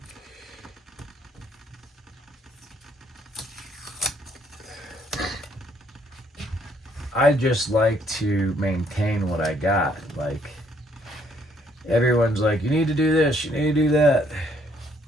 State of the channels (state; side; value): normal; both; correlation 0.67